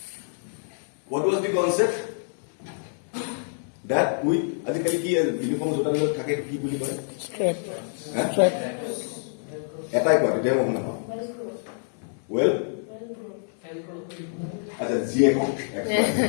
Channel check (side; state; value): right; silent; 61 dB below the other